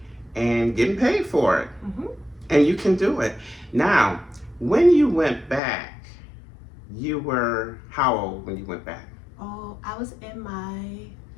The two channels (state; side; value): drops out; right; at 5.6 s